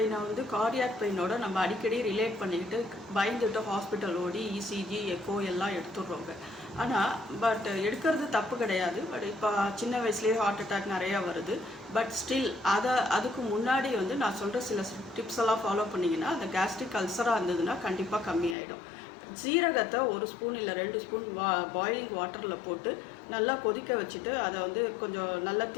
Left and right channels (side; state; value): right; drops out; at 18.6 s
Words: வந்து கார்டியாக் பெயினோட நம்ம அடிக்கடி ரிலேட் பண்ணிக்கிட்டு பயந்துட்டு ஹாஸ்பிட்டல் ஓடி இசிஜி எக்கோ எல்லாம் எடுத்துடுறோங்க. ஆனால் எடுக்கிறது தப்பு கிடையாது. பட் இப்போ சின்ன வயசுலேயே ஹார்ட் அட்டாக் நிறையா வருது. பட் ஸ்டில் அதுக்கு முன்னாடி வந்து நான் சொல்கிற சில டிப்ஸ் எல்லாம் ஃபாலோ பண்ணிங்கன்னா அந்த கேஸ்ட்ரிக் அல்சராக இருந்ததுன்னா கண்டிப்பாக கம்மியாயிடும். ஜீரகத்தை 1 ஸ்பூன் இல்லை 2 ஸ்பூன் பாயிலிங் வாட்டரில் போட்டு நல்லா கொதிக்க வச்சுட்டு அதை வந்து கொஞ்சம் நல்லா